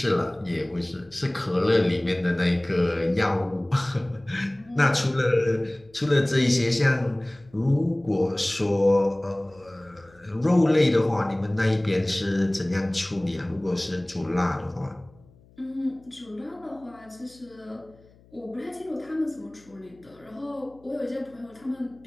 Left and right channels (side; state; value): left; noise; hum, 28 dB below the sound